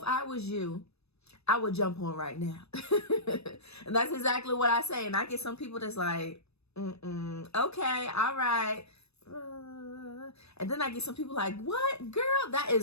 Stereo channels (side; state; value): right; late; 0.79 ms